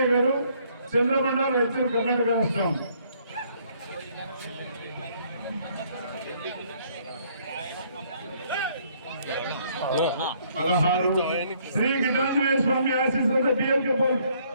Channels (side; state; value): both; inverted; correlation -0.65